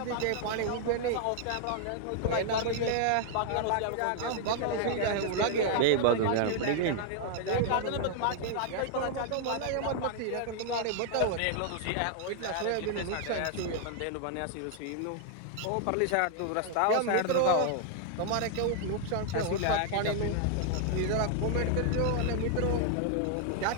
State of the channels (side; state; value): both; different; correlation 0.00